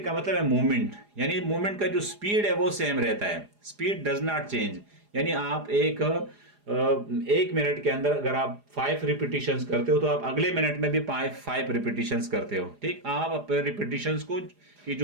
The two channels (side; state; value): left; late; 4.9 ms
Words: का मतलब है मूवमेंट, यानी मूवमेंट का जो स्पीड है वो सेम रहता है, स्पीड डज नॉट चेंज। यानी आप एक मिनट के अंदर अगर आप 5 रिपीटिशंस करते हो तो आप अगले मिनट में भी 5 रिपीटिशंस करते हो, ठीक। आप अपने रिपीटिशंस को की